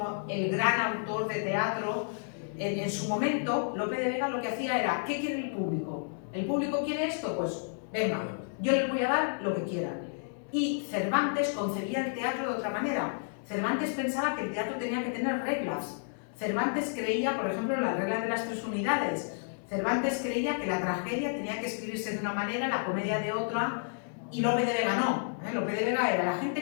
el gran autor de teatro, en su momento Lope de Vega lo que hacía era, ¿qué quiere el público? ¿El público quiere esto? Pues venga, yo les voy a dar lo que quieran. Y Cervantes concebía el teatro de otra manera. Cervantes pensaba que el teatro tenía que tener reglas. Cervantes creía, por ejemplo, en la regla de las 3 unidades. Cervantes creía que la tragedia tenía que escribirse de una manera, la comedia de otra, y Lope de Vega no. Lope de Vega era, ¿la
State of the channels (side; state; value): right; silent; 57 dB below the other